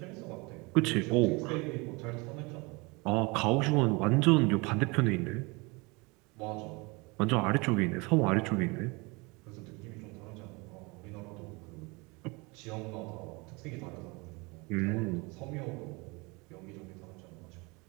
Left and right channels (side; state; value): left; quieter; 26.8 dB